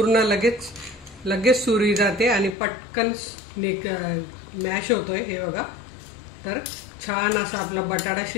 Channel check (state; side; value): drops out; right; at 2.6 s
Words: लगेच सुरी जाते आणि पटकन मॅश होतोय। हे बघा, तर छान असा आपला बटाटा